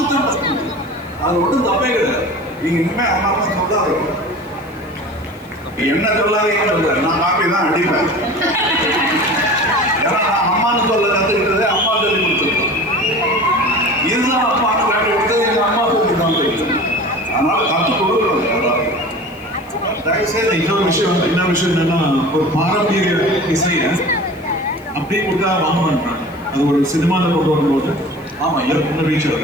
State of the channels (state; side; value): noise; left; hiss, 29 dB below the sound